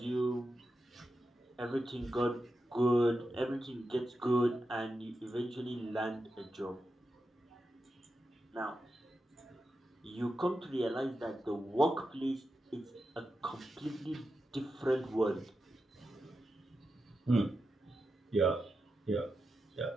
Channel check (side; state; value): both; normal; correlation 0.89